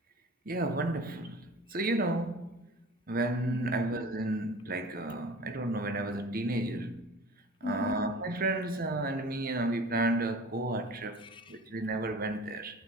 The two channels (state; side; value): normal; both; correlation 0.40